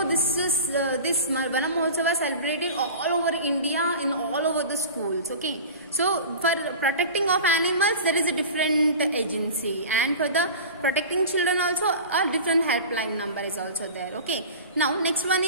this Vana Mahotsava celebrated all over India, in all over the schools. Okay, so for protecting of animals there is a different agency, and for the protecting children also a different helpline number is also there. Okay, now next one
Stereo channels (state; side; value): inverted; both; correlation -0.35